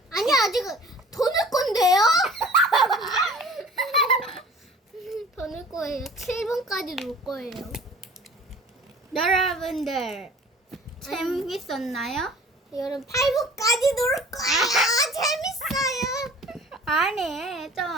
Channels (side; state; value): both; normal; correlation 0.47